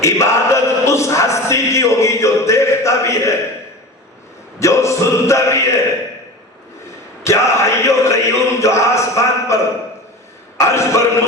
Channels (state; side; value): normal; both; correlation 0.32